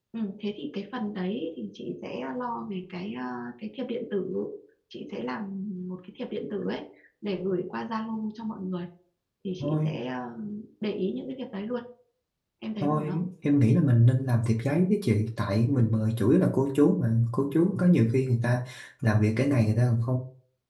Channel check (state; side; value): identical; both; correlation 1.00